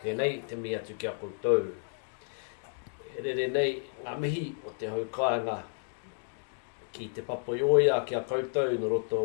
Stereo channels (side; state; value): right; silent; digital silence